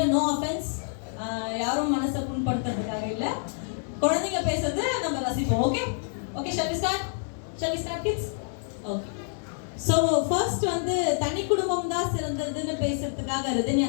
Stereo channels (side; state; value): right; silent; digital silence